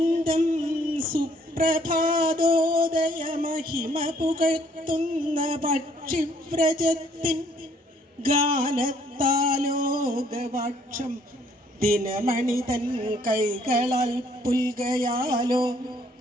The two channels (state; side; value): normal; both; correlation 0.63